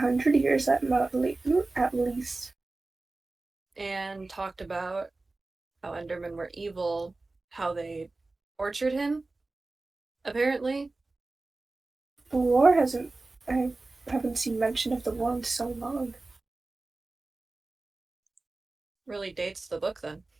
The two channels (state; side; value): quieter; left; 3.3 dB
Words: years at least. And talked about how Endermen were evil, how they tortured him, apparently. The war hasn't. I haven't seen mention of the war in so long. Really dates the book then.